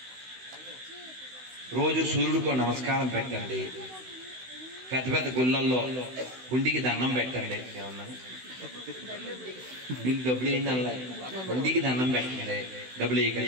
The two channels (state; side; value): late; left; 16 ms